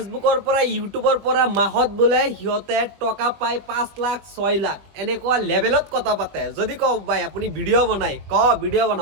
পৰা ইউটিউবৰ পৰা মাহত বোলে সিহঁতে টকা পায় 5 লাখ 6 লাখ এনেকুৱা লেভেলত কথা পাতে যদি কওঁ ভাই আপুনি ভিডিঅ' বনাই ভিডিঅ'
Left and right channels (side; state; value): left; late; 20 ms